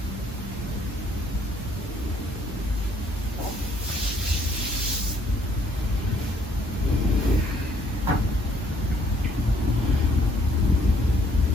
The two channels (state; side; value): normal; both; correlation 0.65